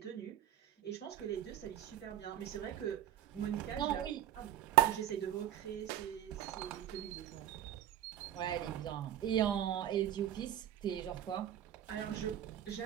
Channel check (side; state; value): left; quieter; 11.5 dB